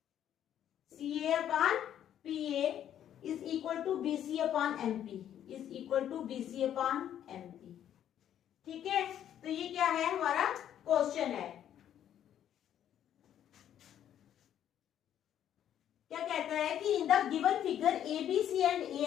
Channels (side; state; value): right; quieter; 10.4 dB